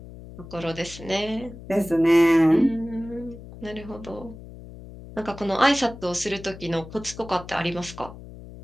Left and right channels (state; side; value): noise; left; hum, 15 dB below the sound